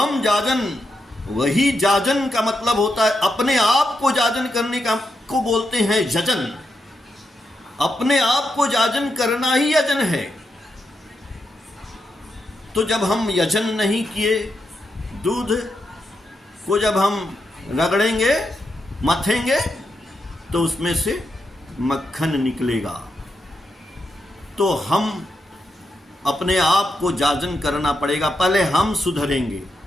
जाजन, वही जाजन का मतलब होता है अपने आप को जाजन करने का, को बोलते हैं यजन। अपने आप को जाजन करना ही यजन है। तो जब हम यजन नहीं किए, दूध को जब हम रगड़ेंगे, मथेंगे, तो उसमें से मक्खन निकलेगा। तो हम अपने आप को जाजन करना पड़ेगा। पहले हम सुधरेंगे,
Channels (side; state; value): both; normal; correlation 0.84